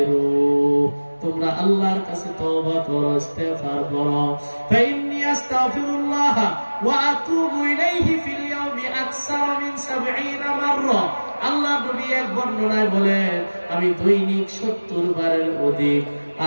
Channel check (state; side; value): inverted; both; correlation -1.00